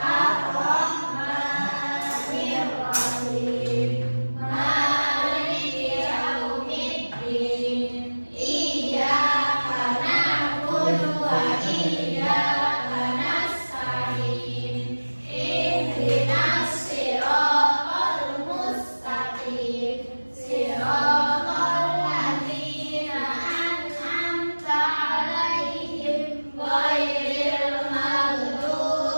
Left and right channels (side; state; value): both; inverted; correlation -1.00